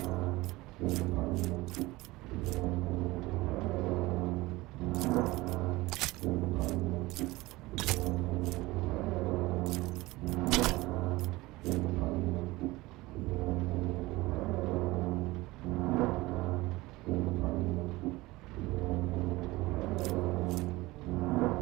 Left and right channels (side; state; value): left; quieter; 20.3 dB